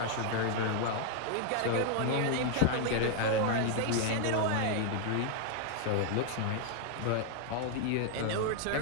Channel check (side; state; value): both; different; correlation 0.00